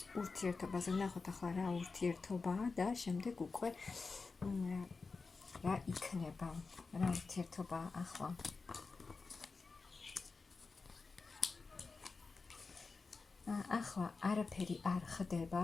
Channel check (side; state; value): right; quieter; 4.3 dB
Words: ურთიერთობაზე. ვნახოთ ახლა რა ურთიერთობაა და შემდეგ უკვე რა იქნება, რა ურთიერთობაა ახლა. ახლა არაფერი არ ხდება